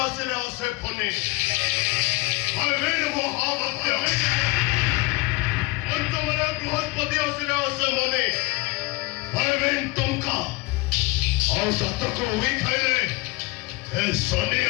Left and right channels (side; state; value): right; quieter; 24.4 dB